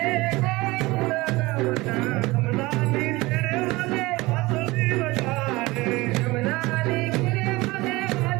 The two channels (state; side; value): quieter; left; 21.3 dB